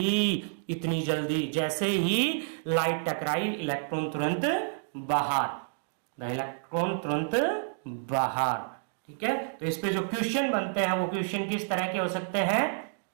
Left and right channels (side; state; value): left; silent; digital silence